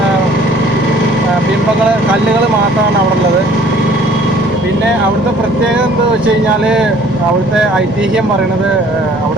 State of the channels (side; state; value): right; noise; rumble, 23 dB below the sound